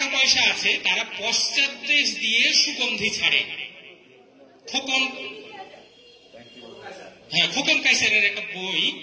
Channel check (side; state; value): both; identical; correlation 1.00